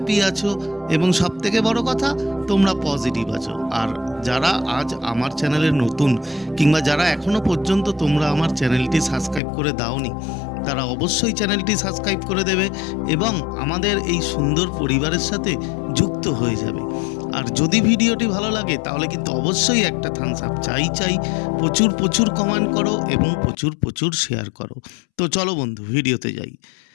আছো এবং সবথেকে বড় কথা তোমরা পজিটিভ আছো। আর যারা আজ আমার চ্যানেলে নতুন কিংবা যারা এখনও পর্যন্ত তোমরা আমার চ্যানেলটি সাবস্ক্রাইব করে দাওনি, তারা অবশ্যই চ্যানেলটি সাবস্ক্রাইব করে দেবে এবং আমাদের এই সুন্দর পরিবারের সাথে যুক্ত হয়ে যাবে। আর যদি ভিডিওটি ভালো লাগে তাহলে কিন্তু অবশ্যই একটা থামস আপ চাই। প্রচুর প্রচুর কমেন্ট করো এবং প্রচুর প্রচুর শেয়ার করো। তো চলো বন্ধু, ভিডিওতে যাই।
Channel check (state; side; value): drops out; right; at 9.4 s